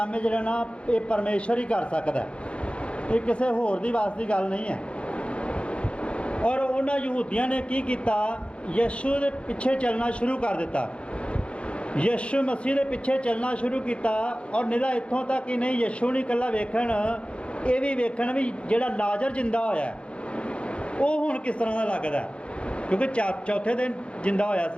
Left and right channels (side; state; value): right; late; 0.059 ms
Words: ਹੈ ਜਿਹੜਾ ਨਾ ਇਹ ਪਰਮੇਸ਼ਰ ਹੀ ਕਰ ਸਕਦਾ, ਇਹ ਕਿਸੇ ਹੋਰ ਦੀ ਵਾਸ ਦੀ ਗੱਲ ਨਹੀਂ ਹੈ। ਔਰ ਉਹਨਾਂ ਯਹੂਦੀਆਂ ਨੇ ਕੀ ਕੀਤਾ, ਯਿਸੂ ਦੇ ਪਿੱਛੇ ਚੱਲਣਾ ਸ਼ੁਰੂ ਕਰ ਦਿੱਤਾ, ਯਿਸੂ ਮਸੀਹ ਦੇ ਪਿੱਛੇ ਚੱਲਣਾ ਸ਼ੁਰੂ ਕੀਤਾ। ਔਰ ਨਿਰਾ ਇੱਥੋਂ ਤੱਕ ਹੀ ਨਹੀਂ, ਯਿਸੂ ਨਹੀਂ ਇਕੱਲਾ ਵੇਖਣ, ਇਹ ਵੀ ਵੇਖਣ ਵੀ ਜਿਹੜਾ ਲਾਜ਼ਰ ਜਿੰਦਾ ਹੋਇਆ ਉਹ ਹੁਣ ਕਿਸ ਤਰ੍ਹਾਂ ਦਾ ਲੱਗਦਾ, ਕਿਉਂਕਿ ਚੌਥੇ ਦਿਨ ਜਿੰਦਾ ਹੋਇਆ